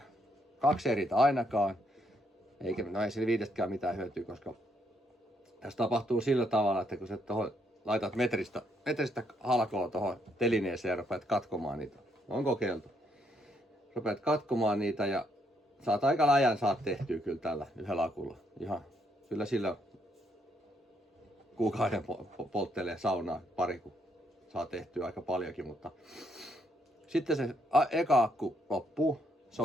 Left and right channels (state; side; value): normal; both; correlation 0.74